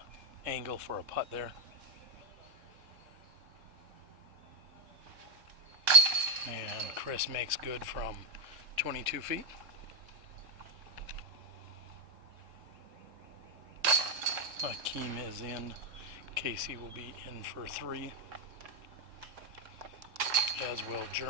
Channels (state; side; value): late; left; 3.7 ms